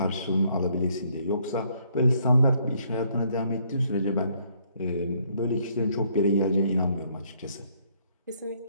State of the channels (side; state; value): both; inverted; correlation -0.68